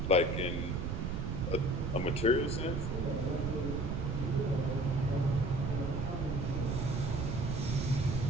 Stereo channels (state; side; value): noise; right; rumble, 2 dB below the sound